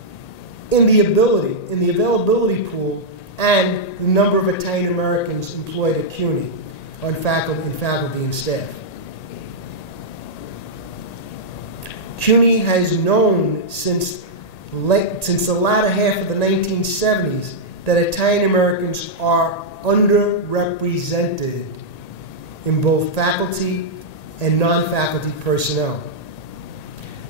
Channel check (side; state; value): right; late; 1.9 ms